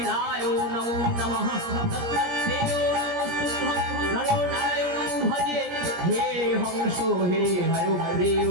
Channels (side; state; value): left; late; 17 ms